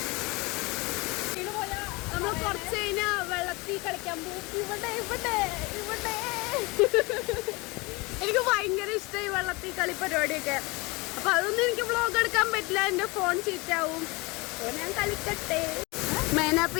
നമ്മൾ കുറച്ച് കഴിഞ്ഞാൽ വെള്ളത്തിൽ കളിക്കാൻ പോകും. ഇവിടെ ഇവിടെ ഇവിടെ എനിക്ക് ഭയങ്കര ഇഷ്ടമായി വെള്ളത്തിൽ കളി പരിപാടിയൊക്കെ. അപ്പൊ അതൊന്നും എനിക്ക് വ്ളോഗ് എടുക്കാൻ പറ്റില്ല, എന്റെ ഫോൺ ചീറ്റാവും. അപ്പോൾ ഞാൻ കളിക്കട്ടെ. മേന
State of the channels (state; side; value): quieter; right; 25.4 dB